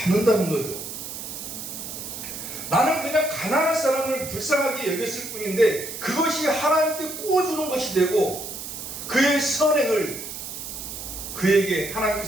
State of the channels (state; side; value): noise; right; hiss, 8 dB below the sound